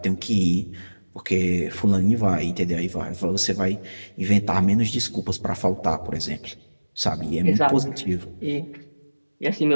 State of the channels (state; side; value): inverted; both; correlation -1.00